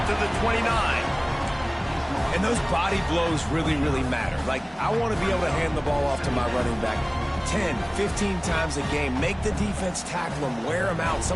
to the 29. And those body blows really, really matter. Like, I want to be able to hand the ball off to my running back 10, 15 times a game. Make the defense tackle them, wear them out.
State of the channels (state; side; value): identical; both; correlation 1.00